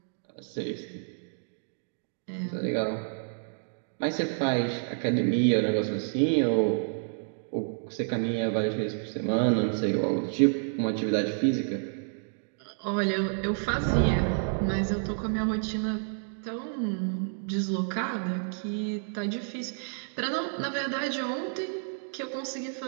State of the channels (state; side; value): silent; left; digital silence